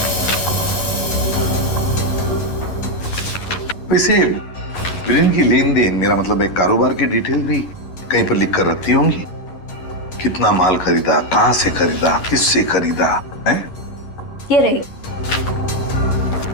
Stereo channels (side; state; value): right; late; 11 ms